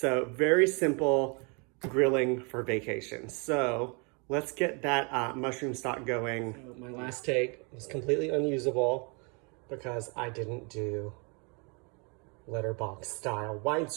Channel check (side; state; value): left; quieter; 33.5 dB